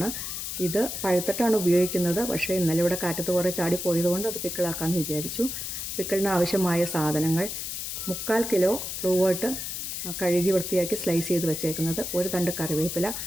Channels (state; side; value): noise; left; hiss, 5 dB below the sound